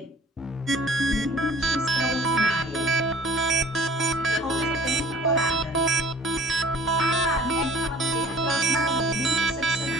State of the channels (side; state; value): both; normal; correlation 0.50